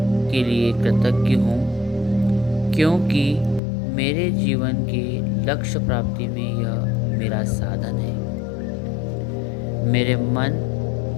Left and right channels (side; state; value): right; drops out; at 3.6 s